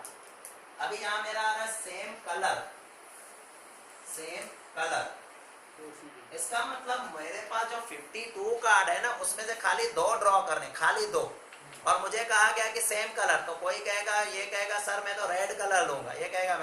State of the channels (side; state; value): both; identical; correlation 1.00